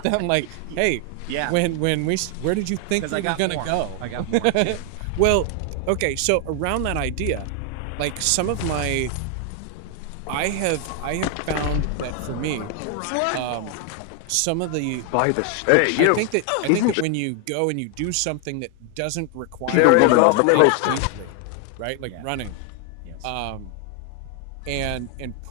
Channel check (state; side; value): different; both; correlation 0.00